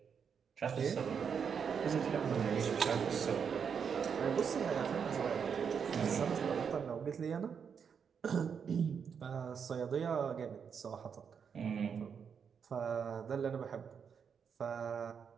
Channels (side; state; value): left; quieter; 6.8 dB